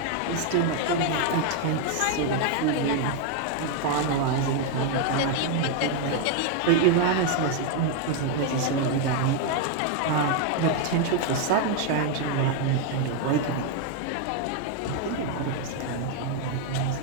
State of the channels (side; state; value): both; different; correlation 0.01